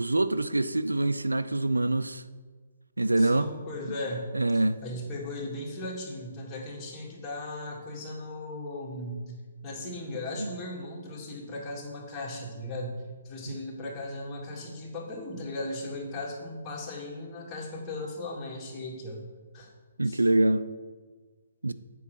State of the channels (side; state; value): both; inverted; correlation -0.87